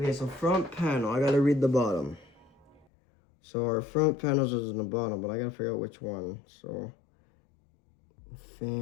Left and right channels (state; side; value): drops out; right; at 2.9 s